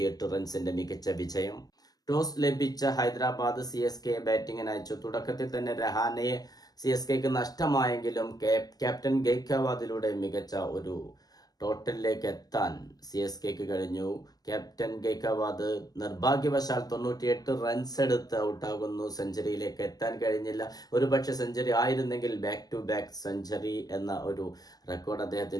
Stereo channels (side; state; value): right; late; 0.18 ms